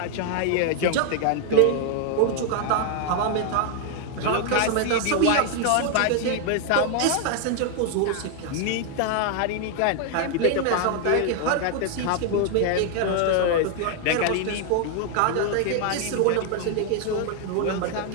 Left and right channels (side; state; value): both; different; correlation 0.00